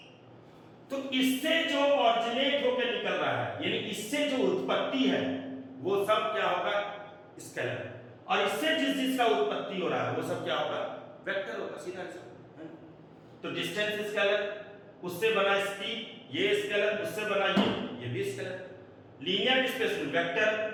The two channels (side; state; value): both; identical; correlation 1.00